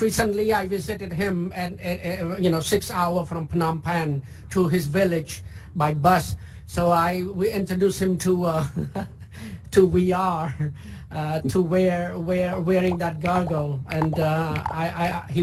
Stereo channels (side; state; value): both; identical; correlation 1.00